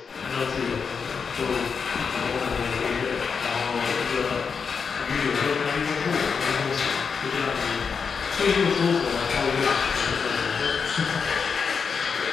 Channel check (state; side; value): quieter; right; 5.8 dB